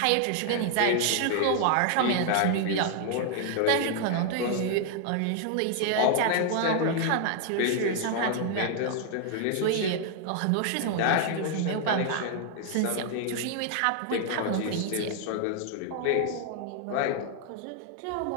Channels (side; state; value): both; different; correlation 0.00